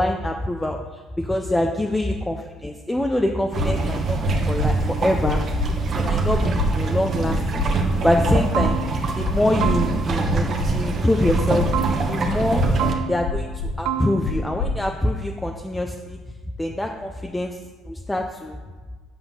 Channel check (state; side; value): normal; both; correlation 0.76